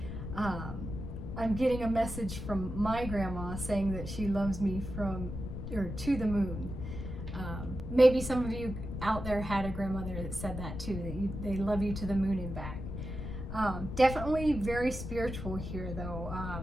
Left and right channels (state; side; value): noise; left; rumble, 7 dB below the sound